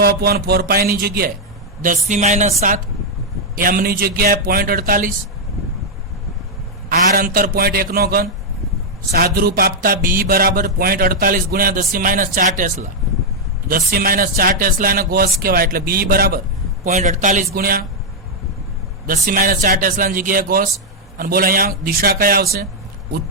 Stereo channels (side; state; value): both; normal; correlation -0.02